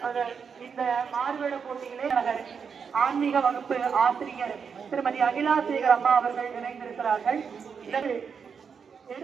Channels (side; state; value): left; quieter; 6.3 dB